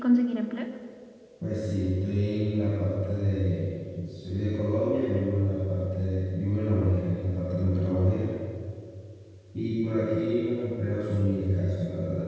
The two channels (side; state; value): both; identical; correlation 1.00